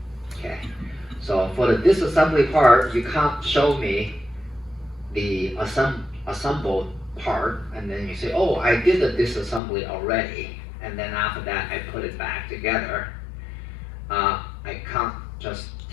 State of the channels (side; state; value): right; drops out; at 9.6 s